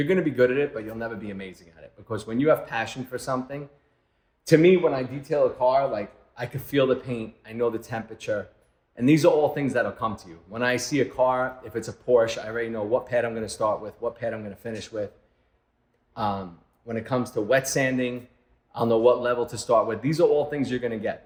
to be good at it, but you'll never be amazing at it. Because when you have passion for something, to me, when I detail a car, like I could feel the paint, I know the temperature, and these are all things that'll come to you. When I see a car, if it's a Porsche, I already know what pad I'm going to start with, what pad I'm going to finish with. When it comes to wet sanding, I'll know what level to start with. These are all things you're going to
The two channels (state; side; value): identical; both; correlation 1.00